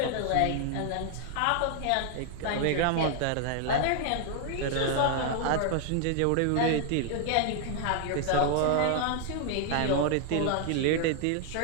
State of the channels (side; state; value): both; different; correlation 0.00